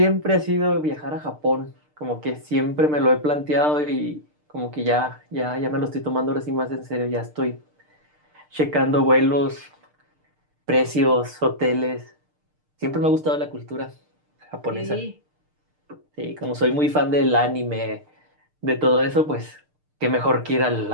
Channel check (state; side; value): late; left; 6.6 ms